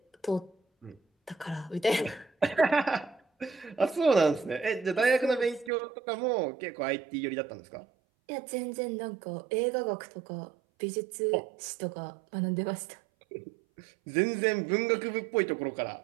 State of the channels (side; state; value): left; drops out; at 5.7 s